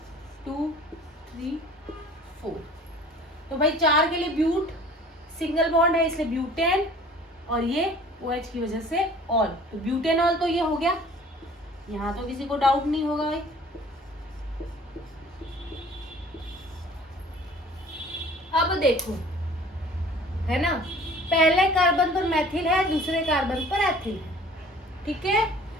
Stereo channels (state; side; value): normal; both; correlation 0.49